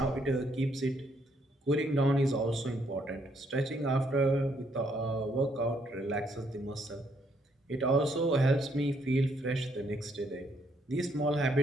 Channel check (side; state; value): both; normal; correlation 0.71